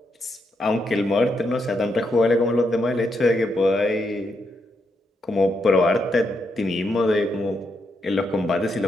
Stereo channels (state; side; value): normal; both; correlation 0.80